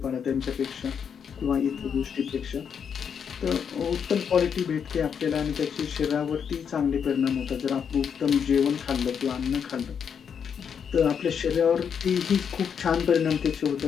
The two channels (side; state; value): right; quieter; 7.3 dB